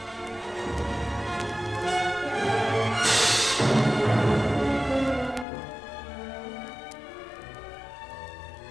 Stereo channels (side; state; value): right; drops out; at 5.5 s